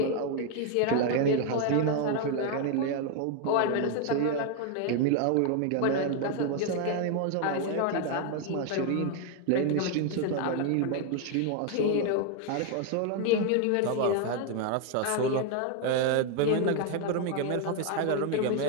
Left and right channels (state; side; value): different; both; correlation 0.01